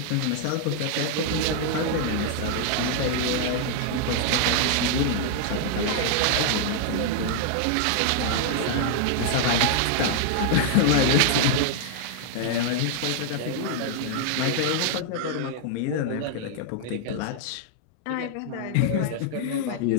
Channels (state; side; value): different; both; correlation 0.00